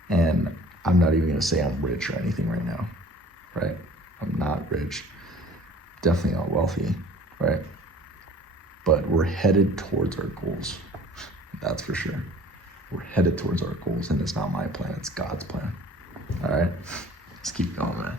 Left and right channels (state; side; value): normal; both; correlation 0.49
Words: And I'm not even gonna say I'm rich or anything right now, right? I'm not rich, definitely not wealthy, right? But we're headed towards our goals, that's for sure. We're headed towards our goals, and it's not my plan, it's God's plan, all right? Let's keep going, man.